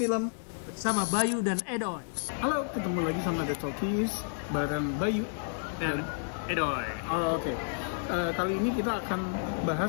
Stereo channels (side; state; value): right; silent; 57 dB below the other